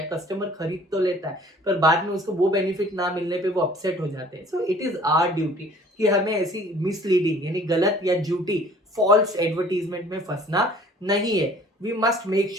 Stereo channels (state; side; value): normal; both; correlation 0.51